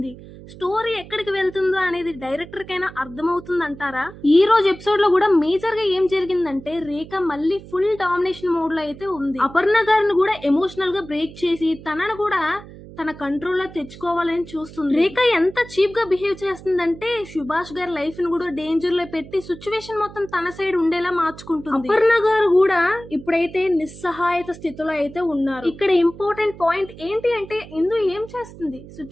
స్టోరీ ఎక్కడికి వెళ్తుందో అనేది డైరెక్టర్ కైనా అర్థమవుతుందంటారా? ఈ రోజు ఎపిసోడ్ లో కూడా మేజర్ గా ఏం జరిగిందంటే రేఖ మళ్ళీ ఫుల్ డామినేషన్ మోడ్ లో అయితే ఉంది. అపర్ణ గారిని కూడా ఎమోషనల్ గా బ్రేక్ చేసి తనను కూడా తన కంట్రోల్లో తెచ్చుకోవాలని చూస్తుంది. రేఖ ఎంత చీప్ గా బిహేవ్ చేస్తుందంటే సుభాష్ గారి లైఫ్ ని కూడా డేంజర్ లో పెట్టి సిచ్యువేషన్ మొత్తం తన సైడ్ ఉండేలా మార్చుకుంటుంది. అపర్ణ గారు కూడా ఇప్పుడైతే నిస్సహాయత స్థితిలో అయితే ఉన్నారు. ఇక్కడ ఇంపార్టెంట్ పాయింట్ ఏంటి అంటే ఇందు ఏం చేస్తుంది,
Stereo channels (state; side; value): noise; right; hum, 17 dB below the sound